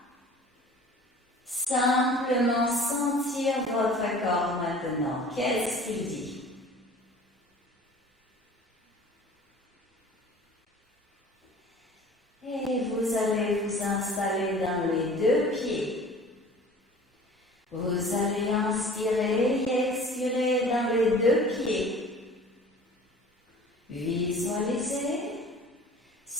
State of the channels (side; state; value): both; normal; correlation 0.45